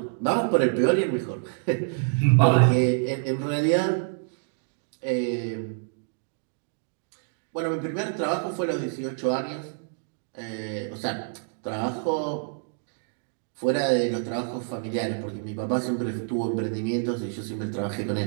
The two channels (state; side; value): silent; left; digital silence